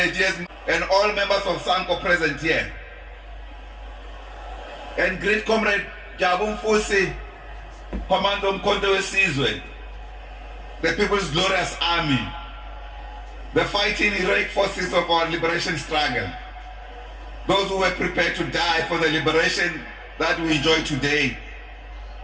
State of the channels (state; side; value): identical; both; correlation 1.00